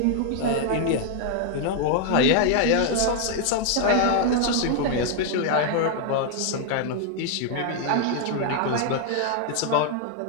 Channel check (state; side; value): different; both; correlation 0.00